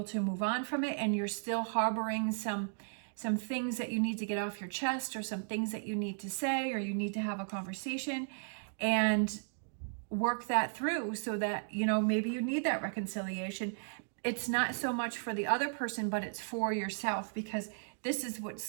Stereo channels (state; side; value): silent; left; digital silence